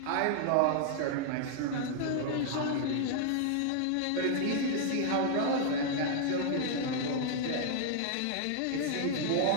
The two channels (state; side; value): different; both; correlation -0.01